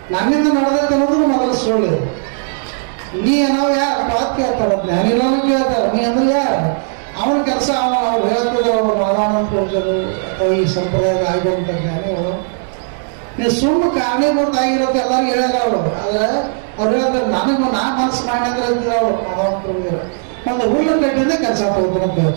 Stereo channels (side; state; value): left; silent; digital silence